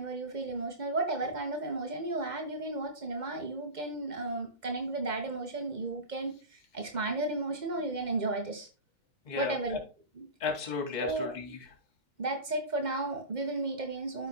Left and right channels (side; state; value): left; late; 2.1 ms